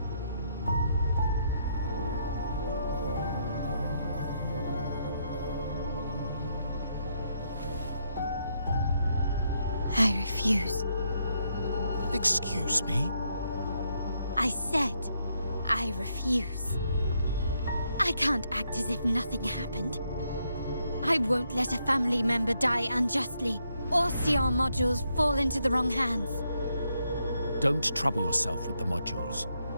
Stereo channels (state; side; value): inverted; both; correlation -0.77